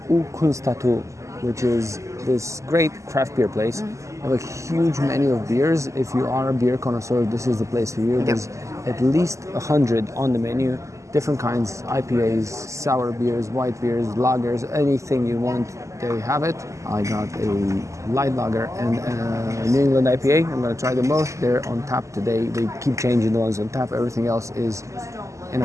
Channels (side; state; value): left; late; 0.15 ms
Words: Kunstatu, which is this great craft beer place. They have a huge menu of beers. If you are a beer connoisseur, this is the place for you. There's at least 100 on the menu. Different kinds, IPAs, sour beers, white beers, lagers, anything you want, they have it. I got a light lager and a New England IPA. I'm gonna try them both. They're on tap today. They keep changing the ones on tap. Everything else is in a